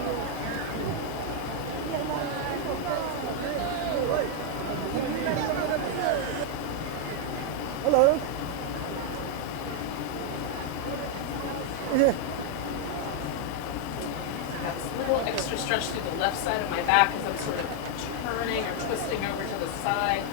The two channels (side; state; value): both; different; correlation 0.00